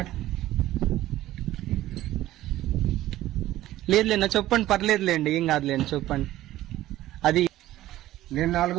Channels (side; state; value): left; quieter; 14.9 dB